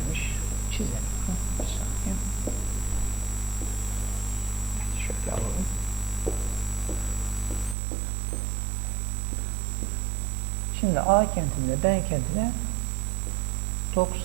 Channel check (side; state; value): left; drops out; at 7.8 s